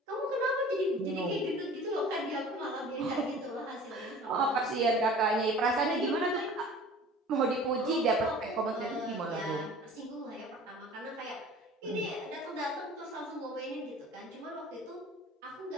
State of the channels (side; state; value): both; normal; correlation 0.44